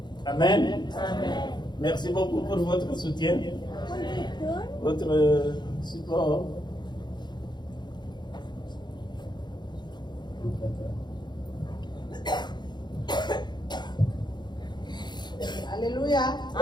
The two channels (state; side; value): late; right; 0.21 ms